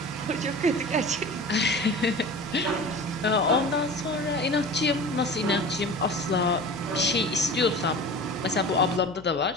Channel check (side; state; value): left; noise; hum, 24 dB below the sound